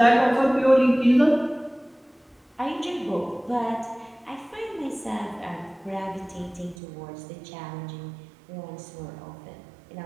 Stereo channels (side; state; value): left; drops out; at 6.8 s